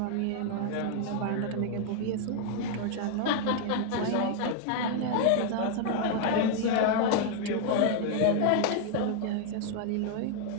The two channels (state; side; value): different; both; correlation 0.00